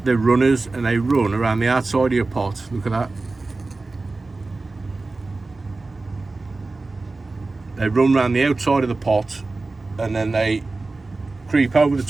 and they run around the outside of your pot. Look at that. They run around the outside of the pot, and then they creep over the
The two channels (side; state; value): left; quieter; 3.5 dB